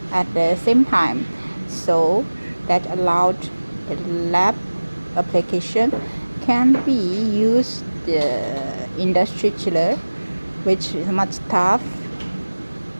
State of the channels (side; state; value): both; inverted; correlation -1.00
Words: at the same time. So that allowed the lab application can be used industry chiller, which is much tough